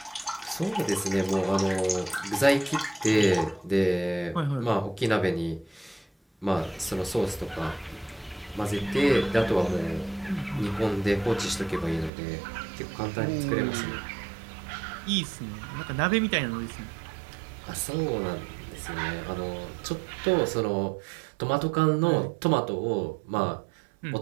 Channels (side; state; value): left; drops out; at 12.1 s